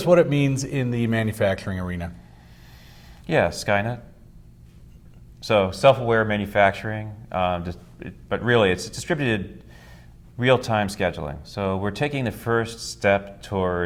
what it means in the manufacturing arena. Yeah, Skynet. So self-aware manufacturing, but really it's distributed real-time scheduling. So we're taking the first step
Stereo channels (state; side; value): identical; both; correlation 1.00